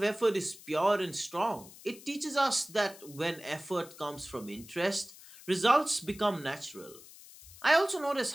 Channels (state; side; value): noise; left; hiss, 19 dB below the sound